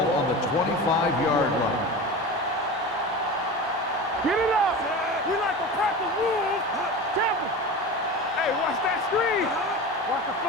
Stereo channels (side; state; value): both; normal; correlation 0.29